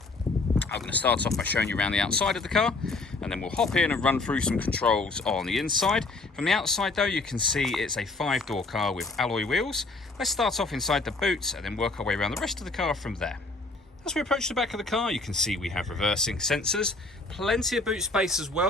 I'm going to start off by showing you around the outside of the car, and then we'll hop in and run through some controls on the inside. From the outside though, you can see it's a 5-door car with alloy wheels. Let's start off inside the boot and then work our way around the rest of the car from there. As we approach the back of the car, you can see we have reversing sensors, plenty of boot space as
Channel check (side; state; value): right; quieter; 3.4 dB